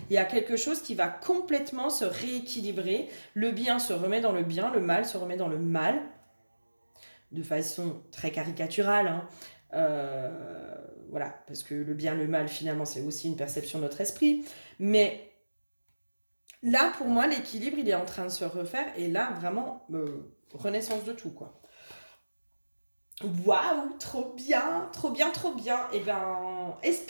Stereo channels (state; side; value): inverted; both; correlation -1.00